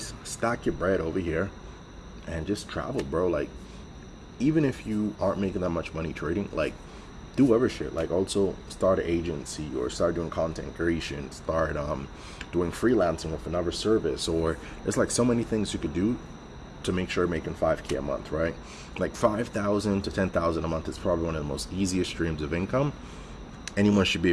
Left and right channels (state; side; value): identical; both; correlation 1.00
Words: stack your bread over here, and just travel, bro. Like, even if you aren't making that much money trading, like, do other shit. Like, also start an agency or start doing content creation, start doing freelancing with another service, or there's like so many things you could do to make sure you're making $5K a month, right? Like $5,000 to $10,000 a month is probably one of the most easiest streams of income anyone should be